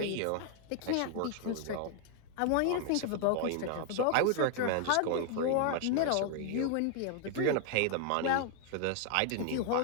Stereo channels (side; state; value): both; different; correlation 0.00